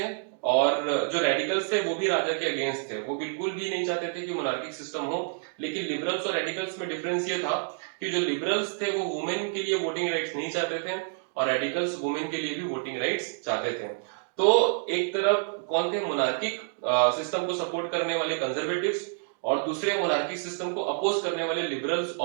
और जो रेडिकल्स थे वो भी राजा के अगेंस्ट थे। वो बिल्कुल भी नहीं चाहते थे कि मोनार्किक सिस्टम हो। लेकिन लिबरल्स और रेडिकल्स में डिफरेंस ये था कि जो लिबरल्स थे वो वुमेन के लिए वोटिंग राइट्स नहीं चाहते थे और रेडिकल्स वुमेन के लिए भी वोटिंग राइट्स चाहते थे। तो एक तरफ कौन थे, मोनार्किक सिस्टम को सपोर्ट करने वाले कंजर्वेटिव्स, और दूसरे मोनार्किक सिस्टम को अपोज करने वाले लिबरल्स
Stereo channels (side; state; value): left; silent; digital silence